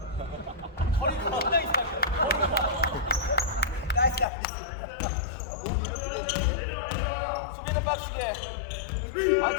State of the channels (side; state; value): right; drops out; at 4.2 s